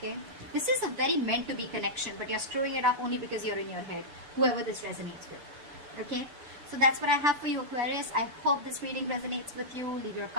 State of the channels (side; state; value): left; late; 6.8 ms